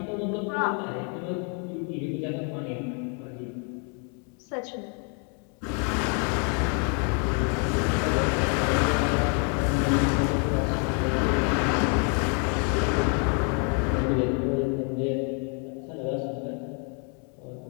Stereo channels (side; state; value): right; quieter; 39.4 dB